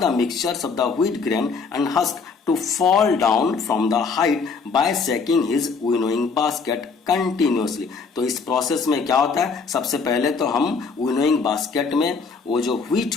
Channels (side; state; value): right; quieter; 5.0 dB